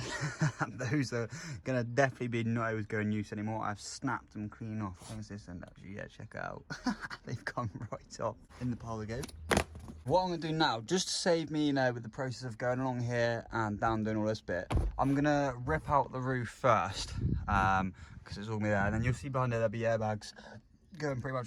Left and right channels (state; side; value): identical; both; correlation 1.00